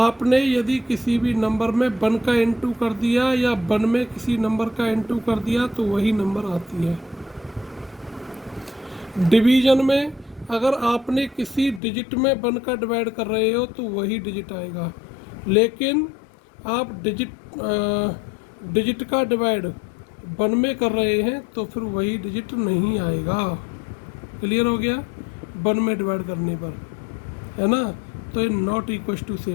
यदि किसी भी नंबर में वन का इनटू कर दिया या वन में किसी नंबर का इनटू कर दिया तो वही नंबर आती है। डिवीजन में अगर आपने किसी डिजिट में वन का डिवाइड कर रहे हो तो वही डिजिट आएगा, लेकिन आप डिजिट का डिवाइड वन में कर रहे हैं तो फिर वही डिजिट नहीं आएगा। क्लियर हो गया? वन में डिवाइड करने पर, है ना, तो ये नॉट इक्वल टू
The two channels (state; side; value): drops out; right; at 11.8 s